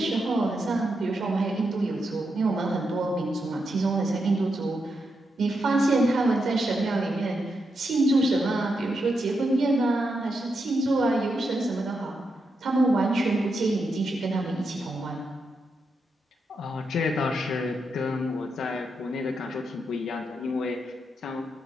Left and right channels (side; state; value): both; normal; correlation 0.84